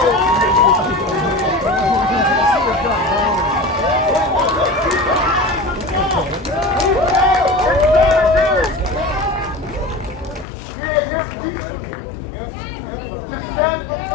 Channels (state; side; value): drops out; right; at 10.5 s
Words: To stand for